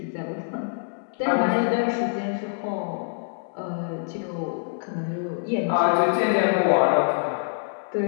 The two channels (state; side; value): silent; right; 62 dB below the other